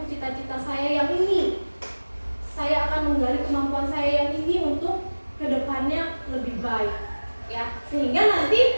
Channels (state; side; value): inverted; both; correlation -1.00